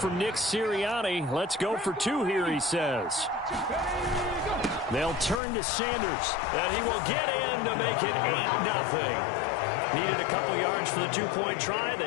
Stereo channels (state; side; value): drops out; right; at 5.4 s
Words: Nick Sirianni. Let's go for 2 here, he says. They'll turn to Sanders, and he will get in to make it 8-0. Needed a couple yards for the 2-point try.